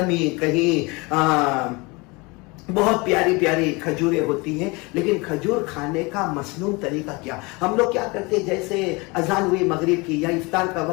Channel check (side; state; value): right; quieter; 26.3 dB